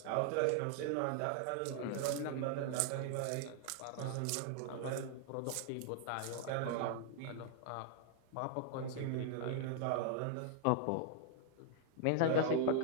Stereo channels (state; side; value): different; both; correlation -0.01